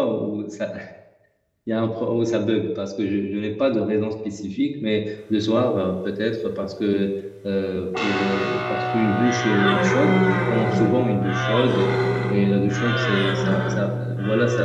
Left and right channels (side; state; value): both; identical; correlation 1.00